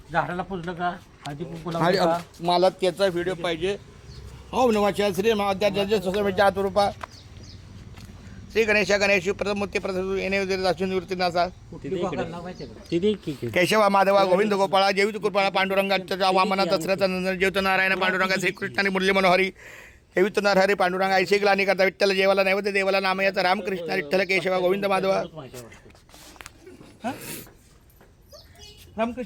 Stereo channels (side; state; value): both; identical; correlation 1.00